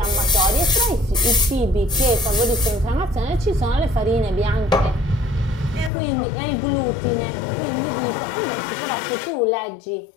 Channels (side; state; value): right; drops out; at 5.9 s